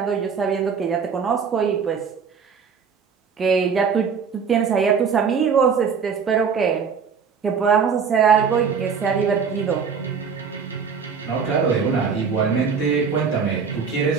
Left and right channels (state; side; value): quieter; left; 6.2 dB